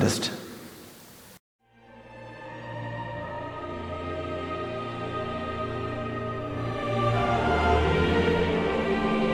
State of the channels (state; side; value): identical; both; correlation 1.00